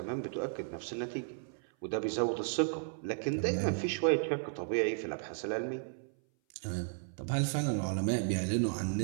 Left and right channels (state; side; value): silent; left; 55 dB below the other